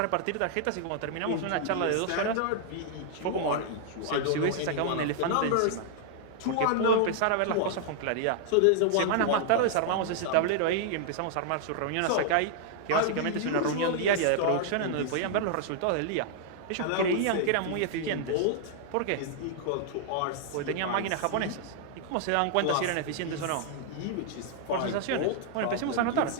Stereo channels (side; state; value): both; different; correlation -0.01